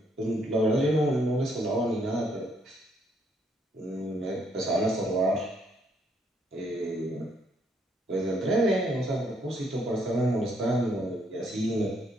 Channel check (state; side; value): normal; both; correlation 0.71